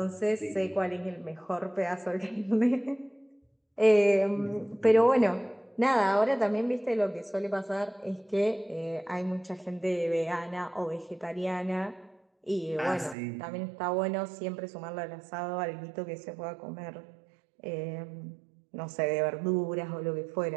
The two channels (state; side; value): drops out; left; at 13.2 s